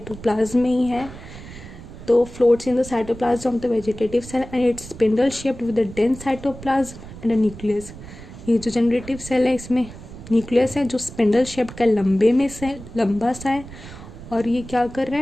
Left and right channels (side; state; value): right; noise; rumble, 15 dB below the sound